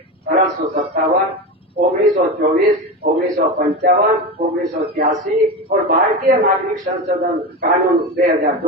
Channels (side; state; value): both; normal; correlation 0.22